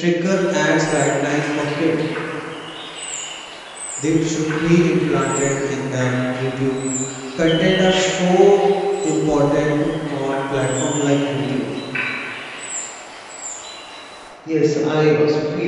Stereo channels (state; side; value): identical; both; correlation 1.00